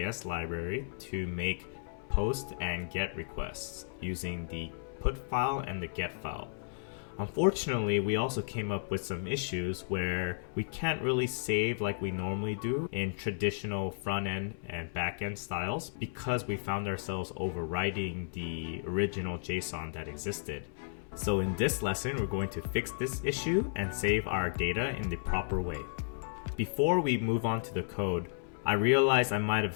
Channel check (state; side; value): silent; right; 55 dB below the other